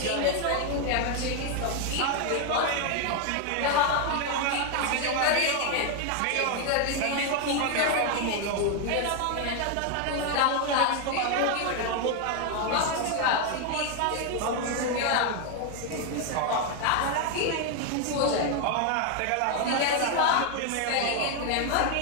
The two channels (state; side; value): different; both; correlation 0.01